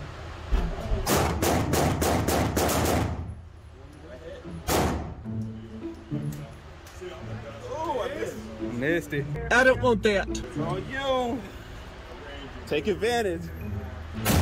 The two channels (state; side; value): identical; both; correlation 1.00